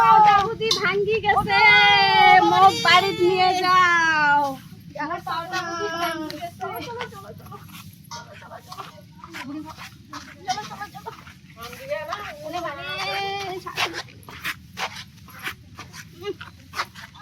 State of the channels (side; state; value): both; identical; correlation 1.00